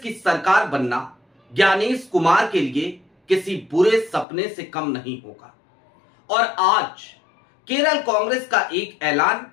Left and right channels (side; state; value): right; drops out; at 4.2 s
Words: सरकार बनना ज्ञानेश कुमार के लिए किसी बुरे सपने से कम नहीं होगा। और आज केरल कांग्रेस का एक ऐलान